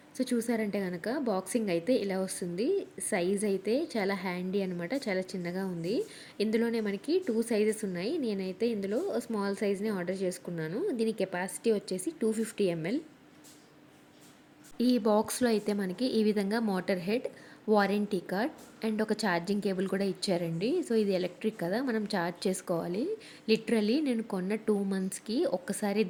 సో, చూసారంటే గనక బాక్సింగ్ అయితే ఇలా వస్తుంది. సైజ్ అయితే చాలా హ్యాండీ అనమాట. చాలా చిన్నగా ఉంది. ఇందులోనే మనకి 2 సైజెస్ ఉన్నాయి. నేనైతే ఇందులో స్మాల్ సైజ్‌ని ఆర్డర్ చేసుకున్నాను. దీని కెపాసిటీ వచ్చేసి 250 ఎంఎల్. ఈ బాక్స్‌లో అయితే మనకి ఈ విధంగా motor head, warranty card and ఒక ఛార్జింగ్ కేబుల్ కూడా ఇచ్చారండి. సో, ఇది ఎలక్ట్రిక్ కదా! మనం ఛార్జ్ చేసుకోవాలి. లిటరల్లీ నేను కొన్న 2 మంత్స్‌కి ఒక్కసారి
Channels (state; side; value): identical; both; correlation 1.00